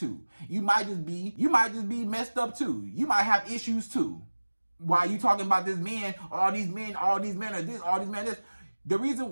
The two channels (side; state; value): both; inverted; correlation -1.00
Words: You might just be messed up too. You might have issues too. Why are you talking about this man, all these men are this, all these men are this? The